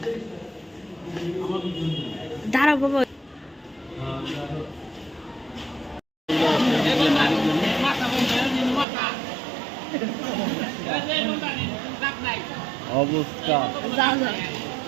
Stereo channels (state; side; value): drops out; left; at 8.8 s